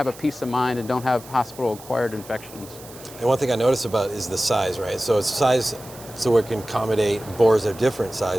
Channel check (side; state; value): right; noise; hiss, 18 dB below the sound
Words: a peace of mind and don't have hospital-acquired infections. And one thing I noticed about is the size, right? So it's size so it can accommodate bores of different